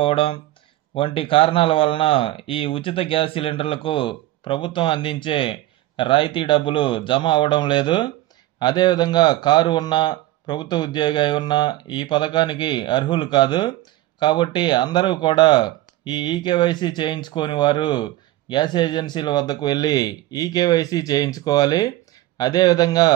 వంటి కారణాల వలన ఈ ఉచిత గ్యాస్ సిలిండర్లకు ప్రభుత్వం అందించే రాయితీ డబ్బులు జమ అవ్వడం లేదు. అదేవిధంగా కారు ఉన్న ప్రభుత్వ ఉద్యోగి అయి ఉన్న ఈ పథకానికి అర్హులు కాదు. కాబట్టి అందరూ కూడా ఈ ఈకేవైసీ చేయించుకోని వారు గ్యాస్ ఏజెన్సీల వద్దకు వెళ్ళి ఈకేవైసీ చేయించుకోవాలి. అదేవిధంగా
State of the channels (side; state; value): left; quieter; 16.0 dB